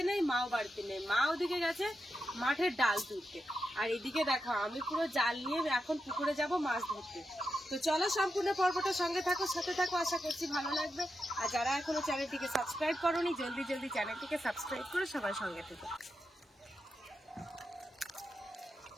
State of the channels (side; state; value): both; normal; correlation 0.87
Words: নেই, মাও বাড়িতে নেই। মা ওদিকে গেছে মাঠের ডাল তুলতে, আর এদিকে দেখো আমি পুরো জাল নিয়ে এখন পুকুরে যাব মাছ ধরতে। তো চলো, সম্পূর্ণ পর্বটা সঙ্গে থাকো, সাথে থাকো, আশা করছি ভালো লাগবে। আর যারা এখনো চ্যানেলটিকে সাবস্ক্রাইব করোনি, জলদি চ্যানেলটিকে সাবস্ক্রাইব করে সবাই সঙ্গে থেকো।